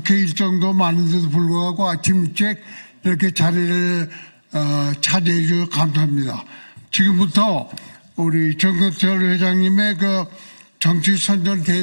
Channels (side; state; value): both; inverted; correlation -1.00